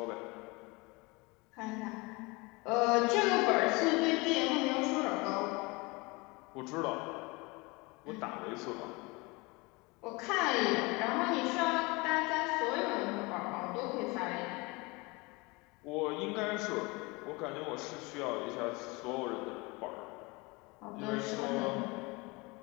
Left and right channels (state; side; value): quieter; right; 25.6 dB